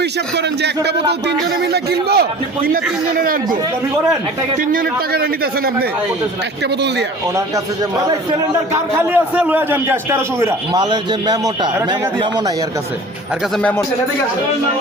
হিসাব করেন যে একটা বোতল 3 জনে মিলে কিনবো, কিনা 3 জনে রাখবো, দাবি করেন? 3 জনের টাকাটা নিতেছেন আপনি একটা বোতল দিয়া? ওনার কাছে যে সিলিন্ডার কার খালি আছে লয়ে যান গ্যাস 1300 করে। মালের যে মেমোটা, মেমো নাই এর কাছে, এর কাছে মেমো।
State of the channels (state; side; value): normal; both; correlation 0.42